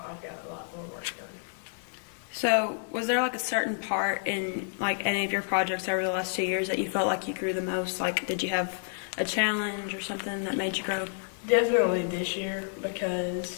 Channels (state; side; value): silent; right; digital silence